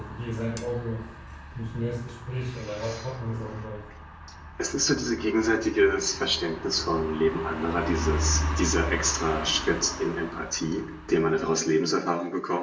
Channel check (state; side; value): identical; both; correlation 1.00